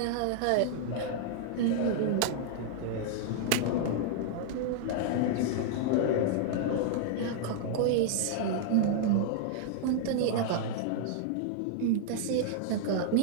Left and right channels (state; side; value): different; both; correlation -0.01